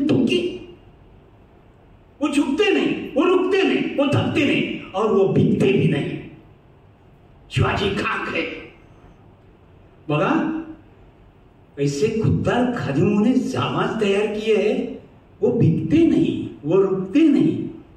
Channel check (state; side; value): identical; both; correlation 1.00